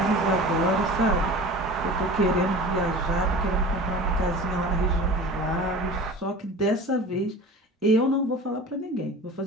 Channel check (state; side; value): normal; both; correlation 0.37